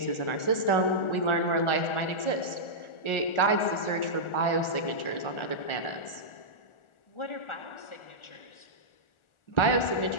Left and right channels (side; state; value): right; late; 1.4 ms